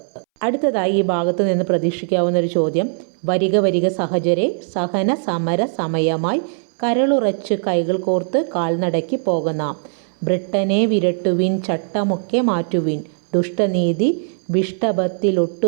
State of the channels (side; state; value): left; silent; 63 dB below the other